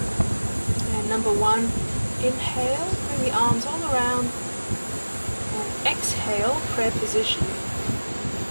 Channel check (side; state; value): both; inverted; correlation -1.00